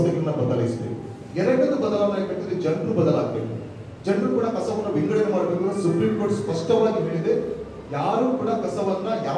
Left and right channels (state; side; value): identical; both; correlation 1.00